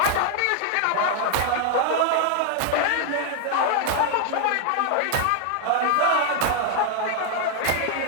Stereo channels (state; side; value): different; both; correlation 0.00